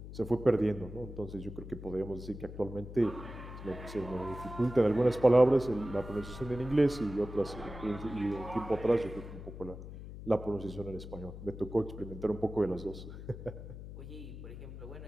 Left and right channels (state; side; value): noise; left; hum, 11 dB below the sound